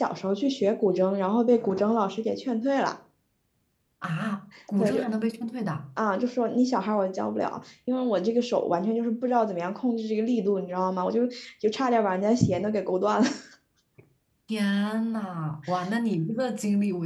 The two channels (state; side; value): identical; both; correlation 1.00